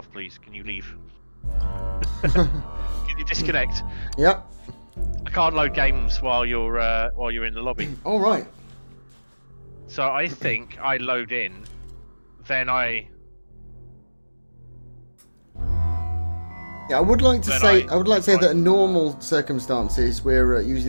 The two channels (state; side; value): inverted; both; correlation -1.00